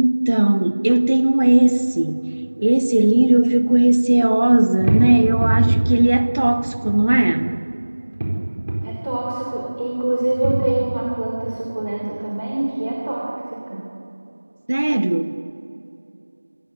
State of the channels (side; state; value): both; inverted; correlation -1.00